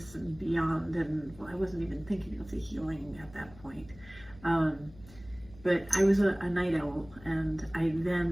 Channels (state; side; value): noise; left; hum, 21 dB below the sound